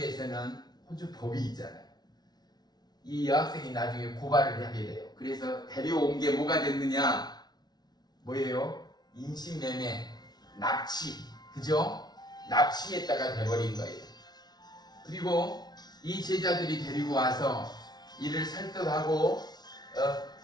호주 법이 있잖아요. 이 여학생이 나중에 고발을 하게 돼요. 그래서 데려온 게 뭐가 됐느냐? 뭐예요? 인신매매, 납치, 그죠? 납치했다가 돼버린 거예요. 그리고 이 제자들이 데리고 와서 이를 설득하고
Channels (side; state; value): right; late; 0.19 ms